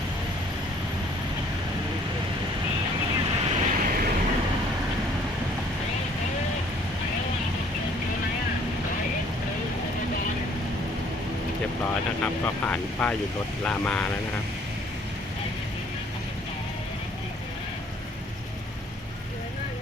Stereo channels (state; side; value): normal; both; correlation 0.59